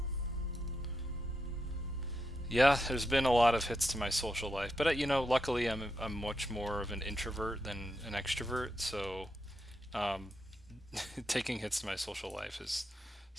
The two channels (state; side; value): normal; both; correlation 0.84